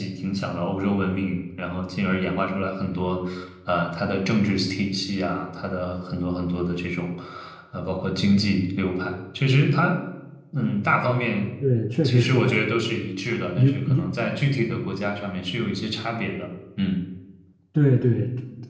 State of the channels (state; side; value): identical; both; correlation 1.00